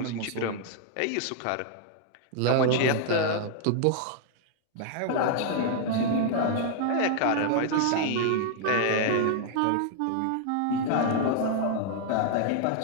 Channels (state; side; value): different; both; correlation -0.01